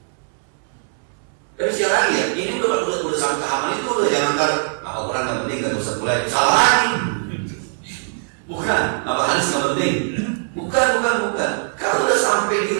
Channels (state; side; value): silent; left; 65 dB below the other